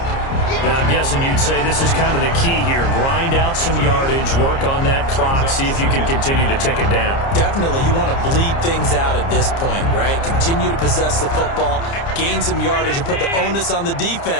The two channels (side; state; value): right; late; 30 ms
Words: Now, I'm guessing you'd say this is kind of the key here. Grind out some yardage, work on that clock, see if you can continue to tick it down. Definitely, you want to bleed things out at this point, right? Continue to possess the football, gain some yardage, and put the onus on the